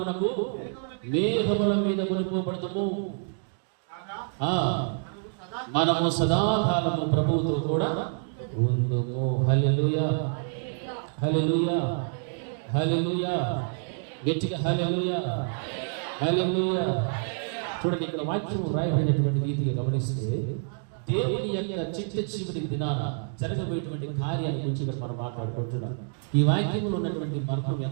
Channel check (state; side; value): silent; left; 60 dB below the other